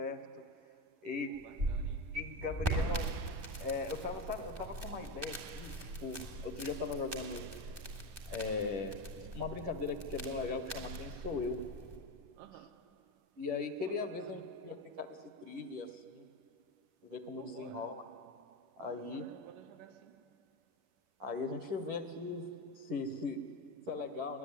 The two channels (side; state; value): left; late; 11 ms